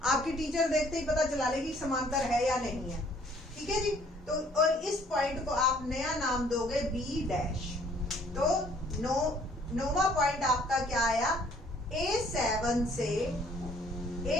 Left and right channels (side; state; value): both; normal; correlation 0.60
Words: आपकी टीचर देखते ही पता चला लेगी समांतर है या नहीं है, ठीक है जी। तो और इस पॉइंट को आप नया नाम दोगे B'। तो नौवां पॉइंट आपका क्या आया, A7 से